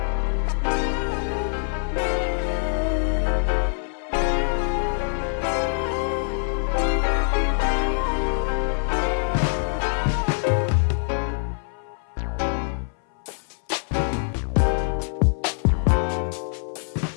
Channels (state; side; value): silent; right; 62 dB below the other